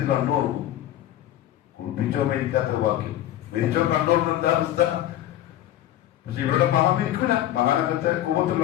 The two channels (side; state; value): right; quieter; 12.8 dB